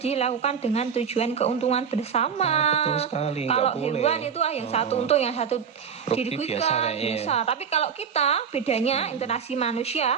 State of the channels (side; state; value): left; quieter; 7.1 dB